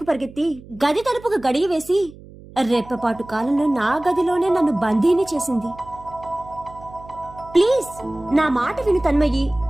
పరిగెత్తి గది తలుపుకు గడియ వేసి రెప్పపాటు కాలంలో నా గదిలోనే నన్ను బందీని చేసింది. ప్లీజ్, నా మాట విను తన్మయ్యి,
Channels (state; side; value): noise; right; hum, 19 dB below the sound